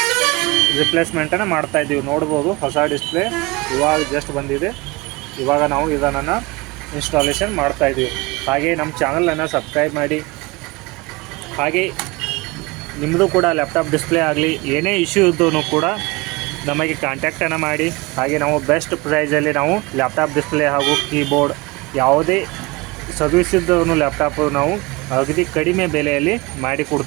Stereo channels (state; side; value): quieter; left; 24.1 dB